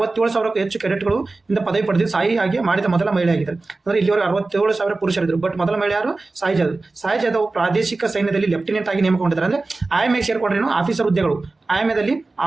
ಹೆಚ್ಚು ಕೆಡೆಟ್ಗಳು ಇಂದ ಪದವಿ ಪಡೆದಿದ್ದು ಸಾಯಿ ಆಗಿ ಮಾಡಿದ ಮೊದಲ ಮಹಿಳೆ ಆಗಿದ್ದಾರೆ. ಅಂದ್ರೆ ಇಲ್ಲಿವರೆಗೆ 67,000 ಪುರುಷರಿದ್ರು, ಬಟ್ ಮೊದಲ ಮಹಿಳೆ ಯಾರು? ಸಾಯಿ ಜಾಧವ್. ಸಾಯಿ ಜಾಧವ್ ಪ್ರಾದೇಶಿಕ ಸೈನ್ಯದಲ್ಲಿ ಲೆಫ್ಟಿನೆಂಟ್ ಆಗಿ ನೇಮಕಗೊಂಡಿದ್ದಾರೆ. ಅಂದ್ರೆ ಐಎಂಎ ಸೇರ್ಕೊಂಡ್ರೇನು ಆಫೀಸರ್ ಹುದ್ದೆಗಳು, ಐಎಂಎದಲ್ಲಿ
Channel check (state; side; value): quieter; left; 3.4 dB